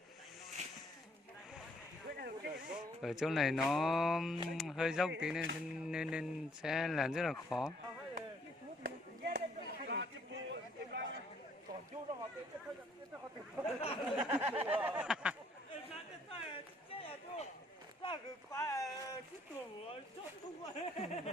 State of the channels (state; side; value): normal; both; correlation 0.64